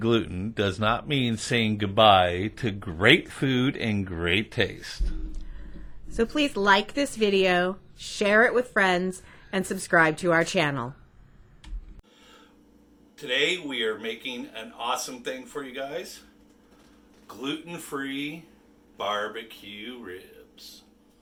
does not mean saying goodbye to great food and great taste. So please like this video, share it with friends, and subscribe to our channel. today we are making an awesome thing for you guys. Gluten-free barbecue ribs.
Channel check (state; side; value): identical; both; correlation 1.00